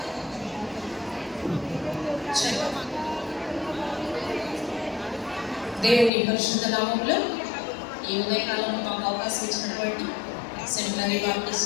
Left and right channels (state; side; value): drops out; right; at 6.1 s